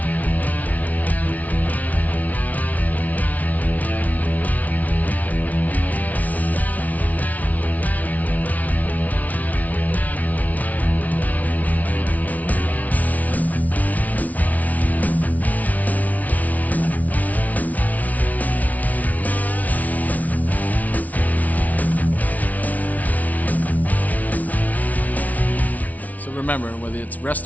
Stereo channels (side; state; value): right; late; 0.073 ms